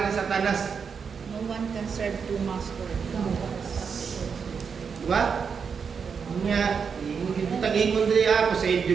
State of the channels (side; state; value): left; quieter; 6.1 dB